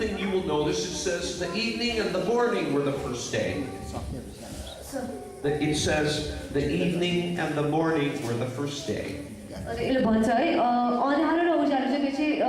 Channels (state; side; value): identical; both; correlation 1.00